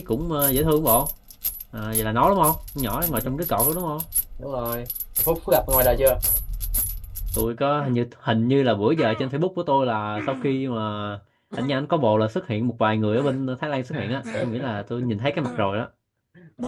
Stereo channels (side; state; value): both; identical; correlation 1.00